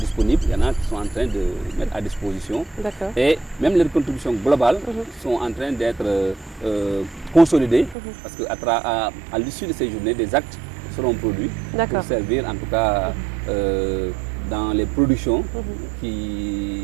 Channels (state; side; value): drops out; left; at 8.0 s